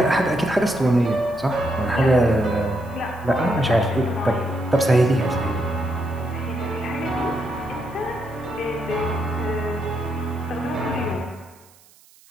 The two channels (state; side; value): noise; right; hiss, 28 dB below the sound